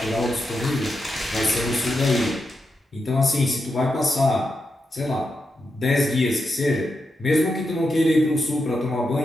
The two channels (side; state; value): both; normal; correlation 0.86